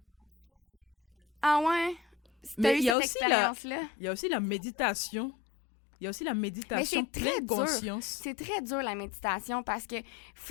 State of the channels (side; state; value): right; drops out; at 3.0 s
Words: Moi aussi, j'ai de la difficulté avec ça. Ouais. Mais il y a aussi la méditation. Il y a aussi la méditation pleine conscience. C'est très dur, la méditation, parce que